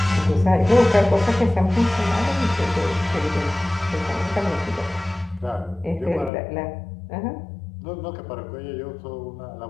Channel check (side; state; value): right; drops out; at 6.3 s